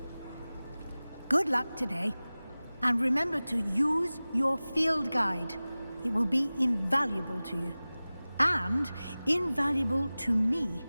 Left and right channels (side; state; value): both; inverted; correlation -0.98